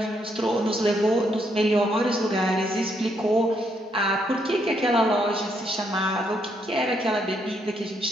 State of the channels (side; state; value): both; normal; correlation 0.74